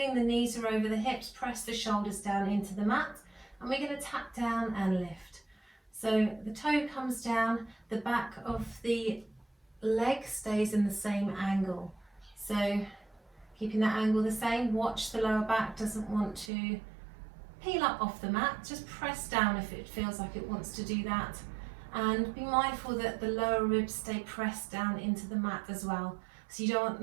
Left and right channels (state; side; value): drops out; left; at 16.5 s